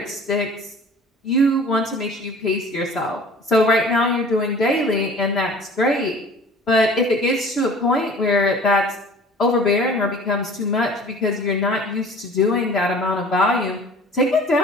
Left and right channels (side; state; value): both; normal; correlation 0.46